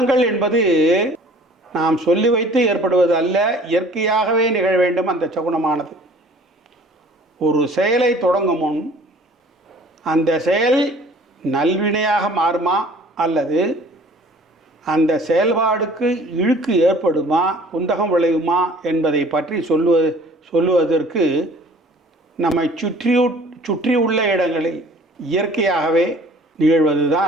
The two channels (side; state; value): both; normal; correlation 0.51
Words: என்பது நாம் சொல்லி வைத்து ஏற்படுவது அல்ல, இயற்கையாகவே நிகழ வேண்டும். அந்த சகுனமானது ஒரு செயலை தொடங்கும் முன் அந்த செயல் நல்வினையாக மாறுமா அல்லது அந்த செயல்பாடுக்கு இழுக்கு ஏற்படுமா, குந்தகம் விளையுமா என்பதை பற்றி சொல்லுவதற்கு நம்மை சுற்றியுள்ள இடங்களில் இயற்கையாகவே